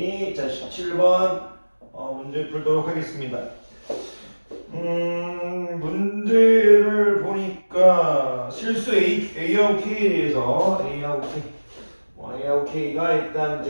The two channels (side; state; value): both; inverted; correlation -1.00